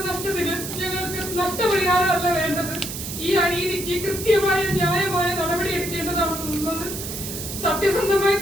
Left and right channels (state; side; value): noise; right; hiss, 7 dB below the sound